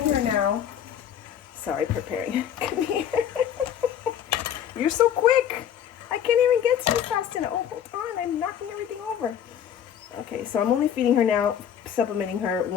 her now. Sorry, preparing. Come here. You're so quick. I can't even get to you fast enough. Oh, hold on, I'm knocking everything over. Okay, so I'm only feeding her now, supplementing her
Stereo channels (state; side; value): quieter; right; 9.3 dB